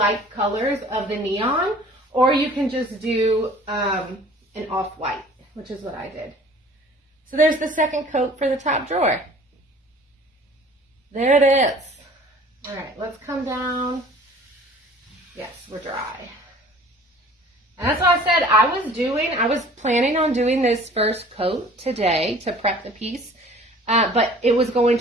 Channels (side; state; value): both; normal; correlation 0.49